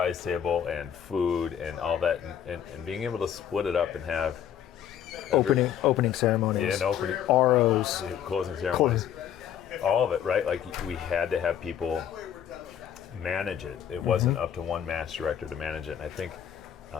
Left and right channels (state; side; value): quieter; right; 9.5 dB